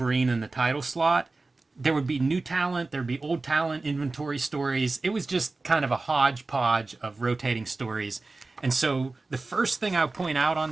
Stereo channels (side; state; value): left; quieter; 3.5 dB